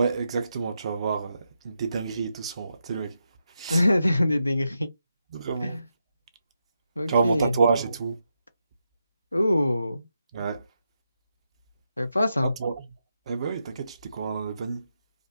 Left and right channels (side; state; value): both; inverted; correlation -0.84